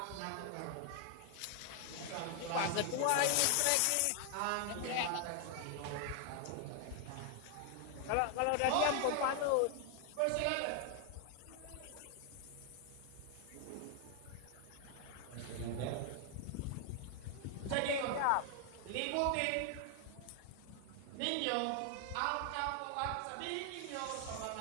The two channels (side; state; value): both; different; correlation 0.00